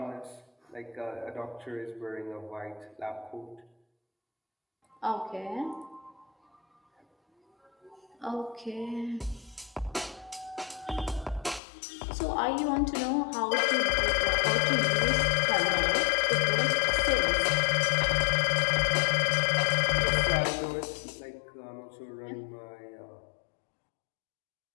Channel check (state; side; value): drops out; right; at 11.6 s